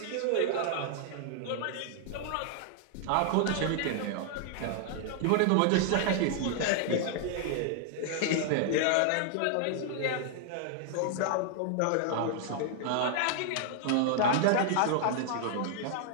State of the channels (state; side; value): different; both; correlation 0.00